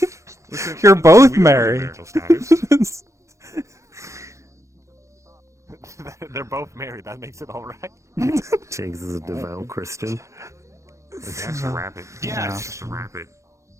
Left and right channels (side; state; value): left; late; 0.15 ms